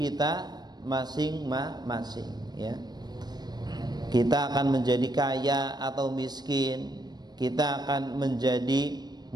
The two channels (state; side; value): late; left; 0.20 ms